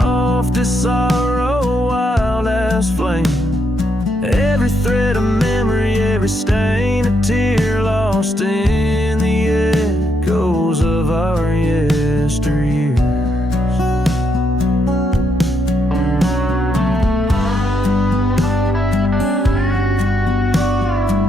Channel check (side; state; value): both; normal; correlation 0.78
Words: as sorrow, wild as last flame. Every thread of memory, every stain, a tear lost in the echoes of our yesteryears.